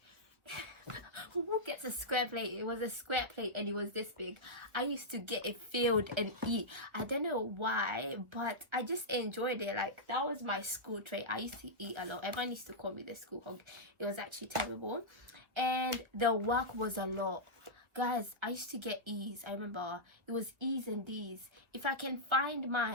Who gets a square plate? It was a square plate, and it was this big. I used to get it filled and eat. I don't know why, but I just enjoyed it. Like, that was my school trait. I used to eat a lot. Everyone used to call me the school hog. It was actually terrible, and the work was a lot. Guys, I used to get E's. I remember it was E's and D's. If I can find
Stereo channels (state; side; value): late; left; 1.5 ms